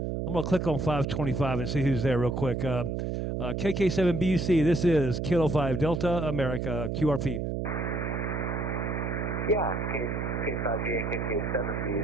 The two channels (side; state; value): right; noise; hum, 2 dB below the sound